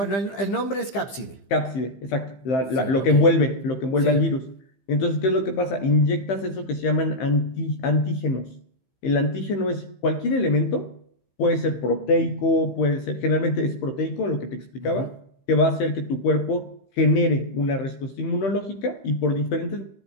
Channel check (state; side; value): late; right; 15 ms